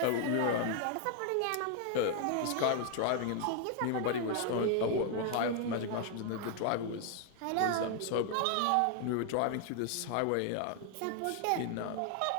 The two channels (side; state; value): both; different; correlation 0.00